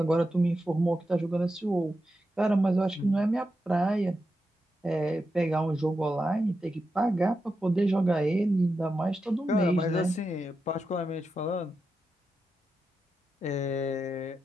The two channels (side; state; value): both; normal; correlation 0.88